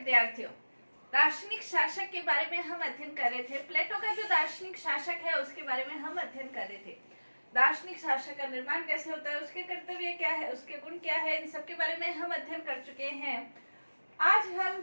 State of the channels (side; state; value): both; inverted; correlation -1.00